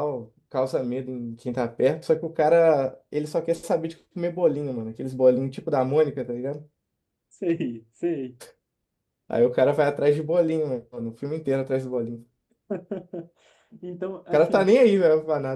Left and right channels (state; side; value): identical; both; correlation 1.00